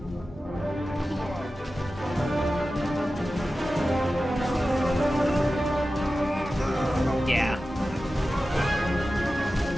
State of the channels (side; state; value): both; normal; correlation 0.94